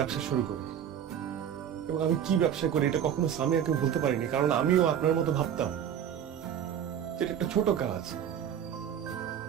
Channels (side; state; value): left; quieter; 9.3 dB